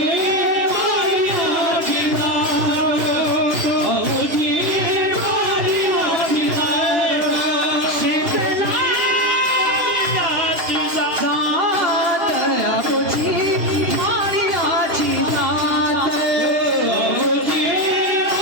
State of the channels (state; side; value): late; left; 3.0 ms